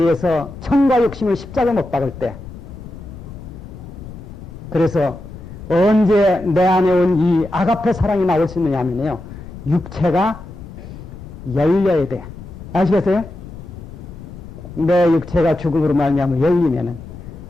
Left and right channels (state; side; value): noise; left; rumble, 14 dB below the sound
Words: 의해서 청과 욕심을 십자가 못 박을 때, 그래서 언제 내 안에 온 이 아가페 사랑이 나올 수 있느냐 하면요, 육체가 열려야 돼. 아시겠어요? 내 육체가 죽음으로 말미암아 열리면은